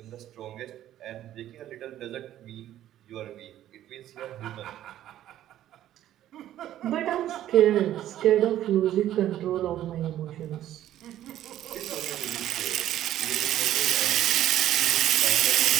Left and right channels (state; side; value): quieter; left; 12.5 dB